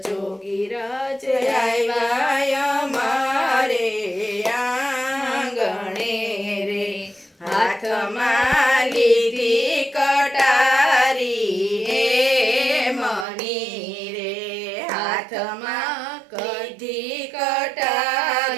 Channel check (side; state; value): left; drops out; at 13.2 s